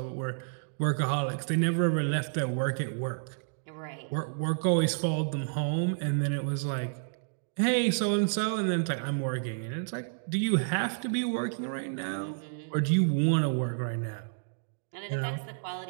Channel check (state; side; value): silent; left; digital silence